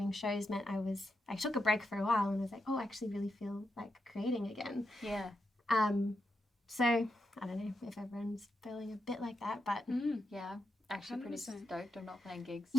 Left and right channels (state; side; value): normal; both; correlation 0.85